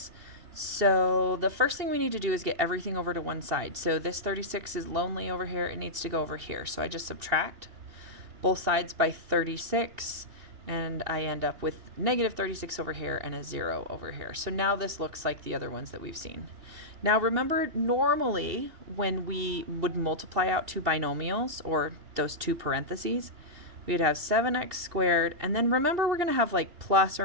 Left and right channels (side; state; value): left; late; 2.7 ms